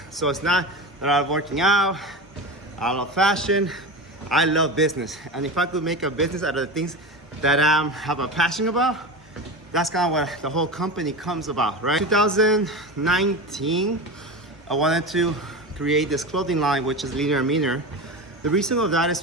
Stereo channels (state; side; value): normal; both; correlation 0.25